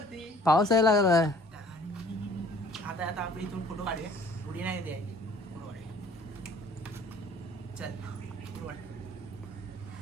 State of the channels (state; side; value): normal; both; correlation 0.54